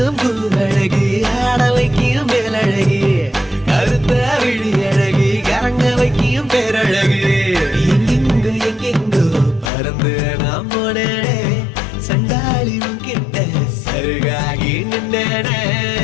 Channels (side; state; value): right; drops out; at 9.7 s